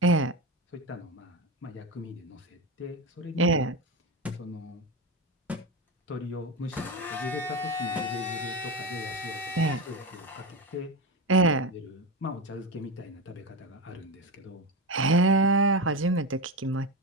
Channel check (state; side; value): normal; both; correlation 0.17